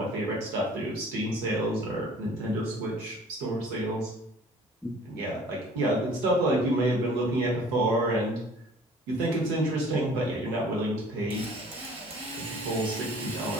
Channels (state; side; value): normal; both; correlation 0.51